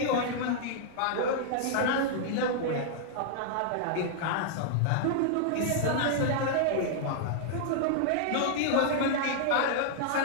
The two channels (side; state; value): both; different; correlation -0.01